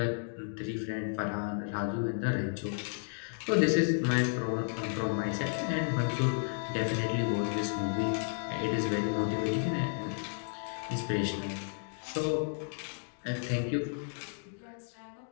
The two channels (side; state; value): right; silent; digital silence